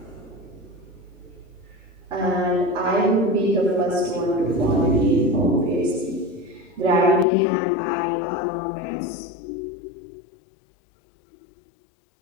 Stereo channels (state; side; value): drops out; right; at 7.2 s